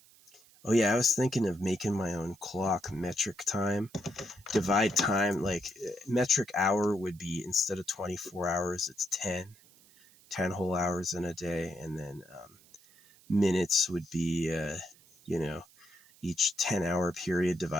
Oh yeah, I was thinking of making my own clock, metric time. Divide time, like metric hour would be, instead of 24 hours, it's 10 whole hours in a day. And then minutes would be, each 10-hour period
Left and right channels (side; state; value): right; noise; hiss, 27 dB below the sound